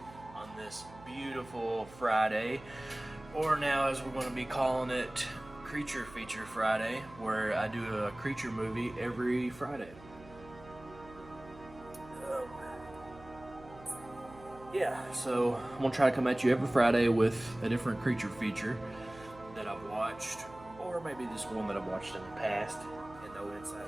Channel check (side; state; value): right; noise; hum, 19 dB below the sound